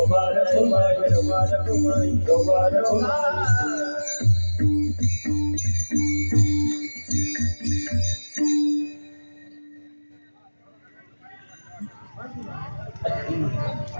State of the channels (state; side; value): inverted; both; correlation -1.00